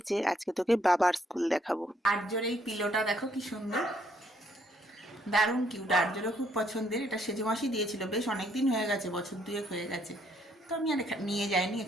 আজকে তোকে বাবার স্কুল দেখাবো। আর্যর এই পিলোটা দেখো কি সুন্দর, দারুণ কিউট। আর্যরও খুব পছন্দের। এটা সেজে মাসি দিয়েছিল, বেশ অনেক দিন হয়ে গেছে, বছর দুয়েক হয়ে গেছে। তো আমি আর নিয়ে যাইনি,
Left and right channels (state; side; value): normal; both; correlation 0.70